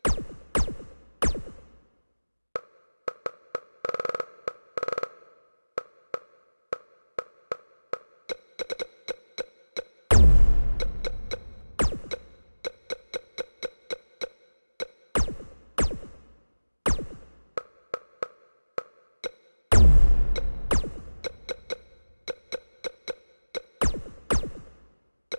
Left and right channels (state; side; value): inverted; both; correlation -1.00